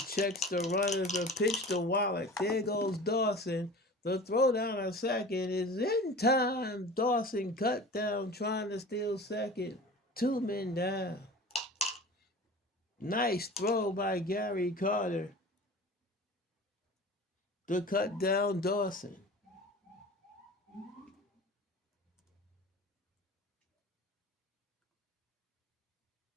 checks the runners, the pitch to Wallach. There goes Dawson. The throw down a second is in time. Dawson cut down trying to steal second. 2 men down. Nice throw by Gary Carter to cut down Dawson.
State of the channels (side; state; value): both; normal; correlation 0.38